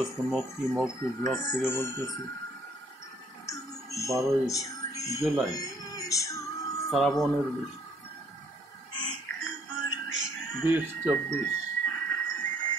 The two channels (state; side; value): normal; both; correlation 0.63